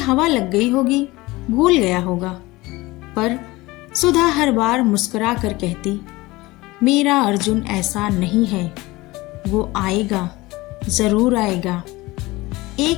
लग गई होगी, भूल गया होगा। पर सुधा हर बार मुस्कुरा कर कहती, मेरा अर्जुन ऐसा नहीं है, वो आएगा, जरूर आएगा।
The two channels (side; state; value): right; quieter; 20.6 dB